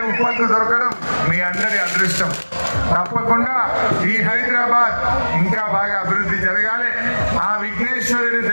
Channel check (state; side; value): inverted; both; correlation -1.00